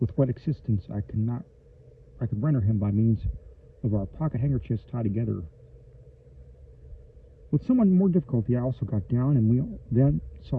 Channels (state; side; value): identical; both; correlation 1.00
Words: with what assistance I could render him by means of our pocket handkerchiefs tied together. With somewhat more difficulty, I also got down, and we then